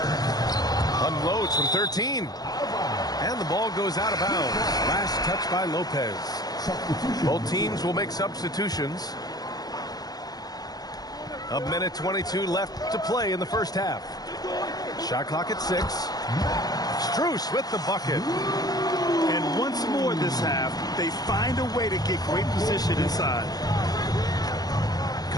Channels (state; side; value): late; right; 0.19 ms